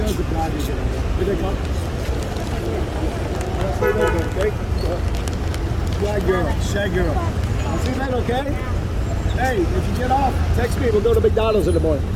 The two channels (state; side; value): identical; both; correlation 1.00